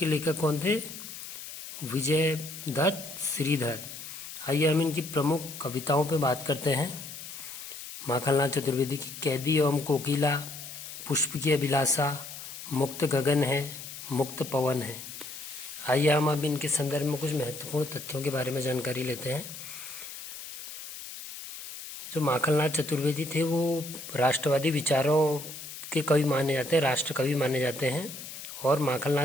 लेखक कौन थे? विजय दत्त श्रीधर। आइए हम इनकी प्रमुख कविताओं पे बात करते हैं। माखनलाल चतुर्वेदी की: कैदी एवं कोकिला, पुष्प की अभिलाषा, मुक्त गगन है, मुक्त पवन है। आइए हम अब इनके संदर्भ में कुछ महत्वपूर्ण तथ्यों के बारे में जानकारी लेते हैं। जो माखनलाल चतुर्वेदी थे वो राष्ट्रवादी विचारों के कवि माने जाते हैं, राष्ट्र कवि माने जाते हैं। और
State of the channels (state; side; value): noise; left; hiss, 11 dB below the sound